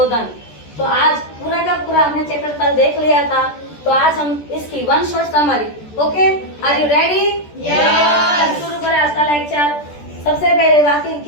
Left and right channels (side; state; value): right; late; 14 ms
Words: तो आज पूरा का पूरा हमने चैप्टर कल देख लिया था, तो आज हम इसकी one short summary. Okay, are you ready? Yes. शुरू करें आज का लेक्चर। सबसे पहले वाक्य